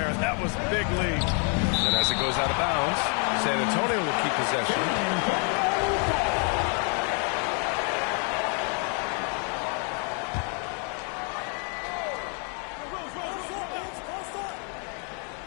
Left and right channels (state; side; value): quieter; right; 40.0 dB